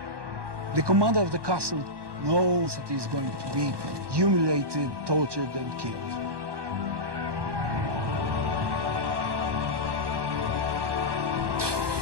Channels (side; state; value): left; late; 1.2 ms